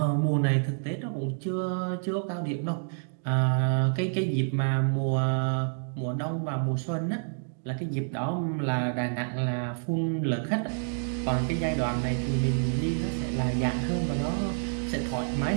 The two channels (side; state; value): left; silent; digital silence